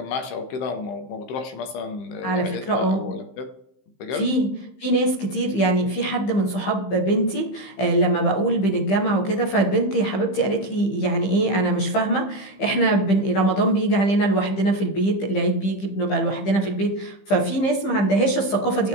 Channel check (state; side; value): late; right; 15 ms